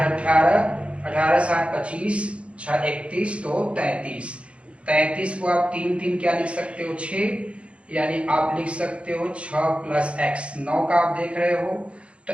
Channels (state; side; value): late; left; 0.060 ms